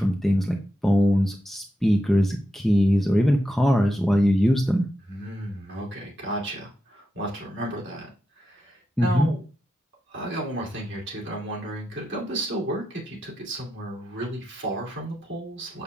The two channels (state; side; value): normal; both; correlation 0.87